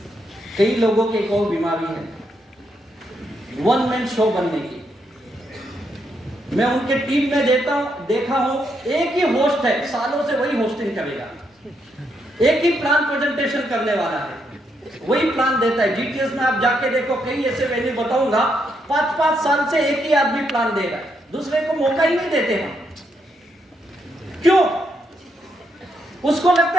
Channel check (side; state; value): both; normal; correlation 0.78